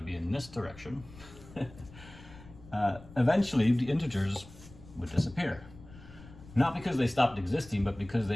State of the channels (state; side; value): noise; left; rumble, 19 dB below the sound